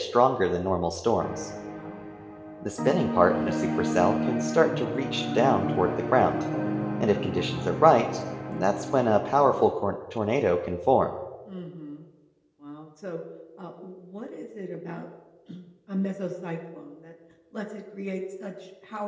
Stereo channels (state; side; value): identical; both; correlation 1.00